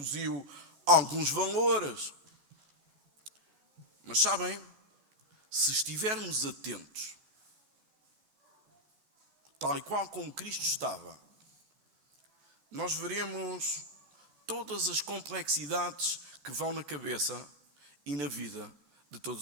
alguns valores. Mas sabem, se estivermos atentos, tal e qual como Cristo estava, nós veremos todas as complexidades que vão na cabeça e na vida de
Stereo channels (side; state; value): left; late; 14 ms